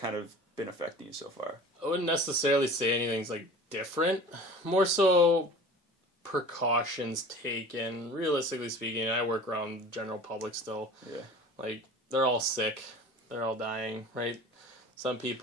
of been affecting you so far? I wouldn't necessarily say anything's like different. More so precautions taken. Realistically speaking, I work around general public still. Yeah. Like they're all sick. They're all dying, right? Some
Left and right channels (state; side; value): normal; both; correlation 0.41